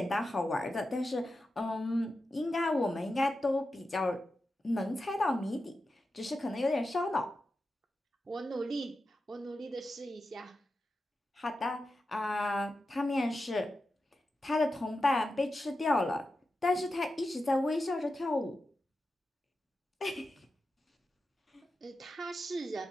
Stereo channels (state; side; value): normal; both; correlation 0.91